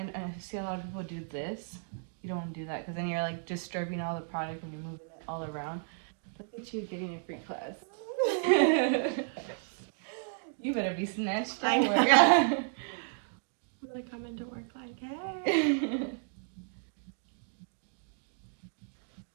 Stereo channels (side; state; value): left; silent; digital silence